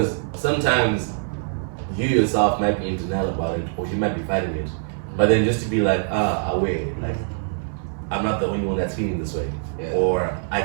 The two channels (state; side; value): silent; left; 62 dB below the other